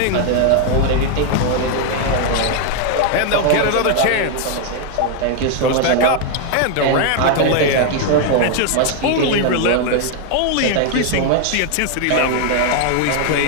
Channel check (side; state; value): both; different; correlation 0.00